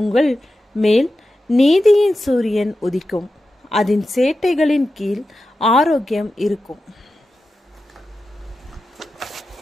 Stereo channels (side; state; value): both; normal; correlation 0.92